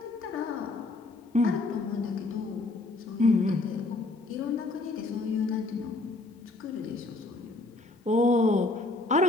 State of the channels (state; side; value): quieter; right; 3.1 dB